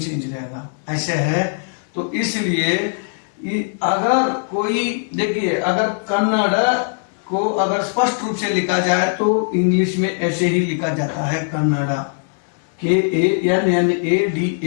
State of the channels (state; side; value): silent; right; digital silence